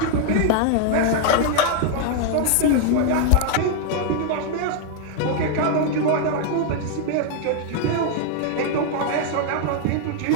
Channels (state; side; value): different; both; correlation 0.00